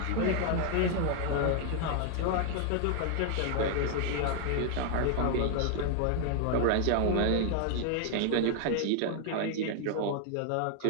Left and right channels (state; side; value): different; both; correlation 0.00